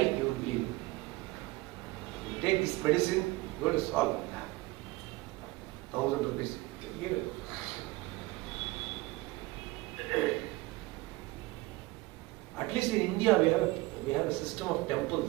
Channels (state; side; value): quieter; left; 21.0 dB